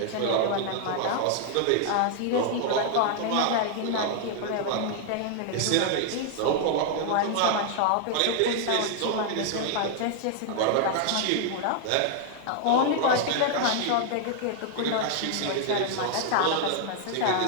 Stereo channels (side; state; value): both; different; correlation 0.00